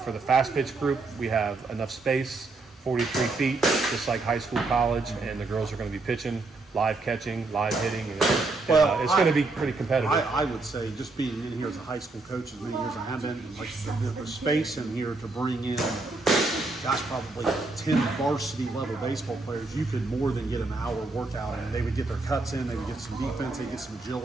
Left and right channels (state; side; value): quieter; left; 3.5 dB